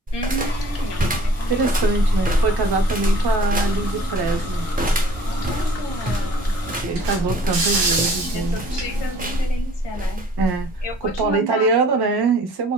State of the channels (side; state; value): both; normal; correlation 0.51